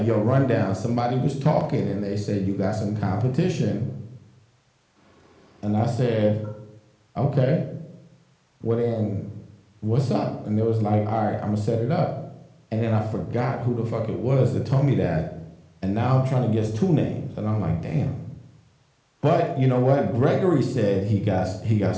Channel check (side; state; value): both; identical; correlation 1.00